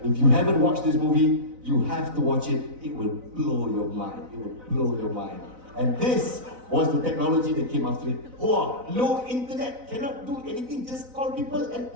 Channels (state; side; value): late; left; 4.0 ms